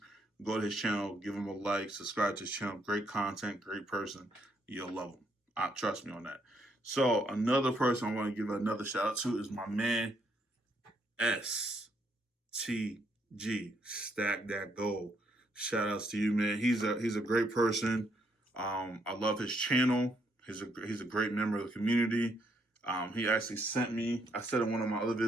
go to his channel, give him a like, subscribe to his channel. Great content, great person. You'll love him. Trust me on that. So another person I want to give another shout out to is my man, STG, Stack That Gold. Shout outs to you, man. He's a great person. I love his channel. He's a great member of the community. He actually sent me, I said in one of my other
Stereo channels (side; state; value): both; normal; correlation 0.73